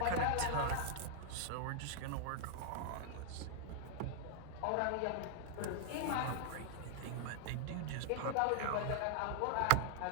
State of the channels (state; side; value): different; both; correlation 0.00